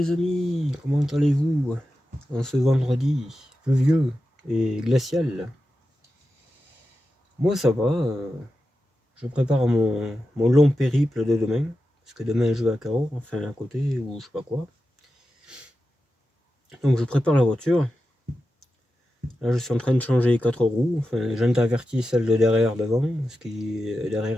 amis, comment allez-vous en ce vendredi pluvieux et glacial? Moi ça va, je prépare mon long périple de demain, parce que demain je vais à Cahors, enfin à côté ou je sais pas quoi. Donc je prépare la voiture, là je suis en train de changer les 4 roues, enfin j'intervertis celle de derrière devant, parce que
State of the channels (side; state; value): both; normal; correlation 0.91